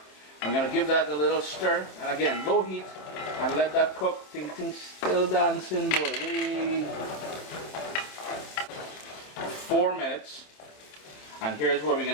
I'm gonna give that a little stir, and again, low heat, and let that cook. Things still dancing, boy. Wait. 4 minutes, and here's where we're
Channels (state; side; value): late; right; 27 ms